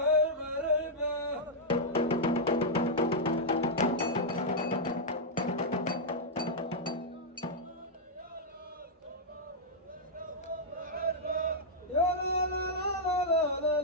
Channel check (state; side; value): normal; both; correlation -0.07